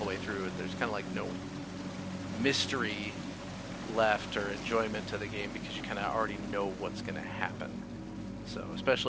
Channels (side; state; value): both; identical; correlation 1.00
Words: way through, there's kind of like no mystery left or enjoyment to the game, because you kind of already know what's going to happen. So